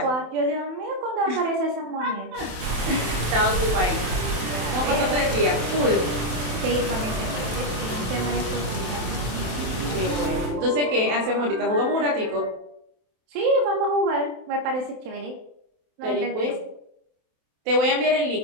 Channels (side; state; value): left; late; 27 ms